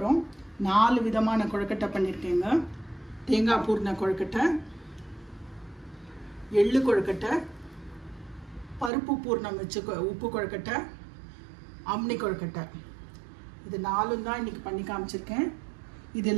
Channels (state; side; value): drops out; left; at 8.9 s